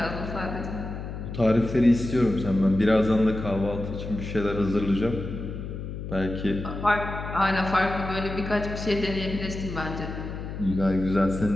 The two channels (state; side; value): noise; left; hum, 7 dB below the sound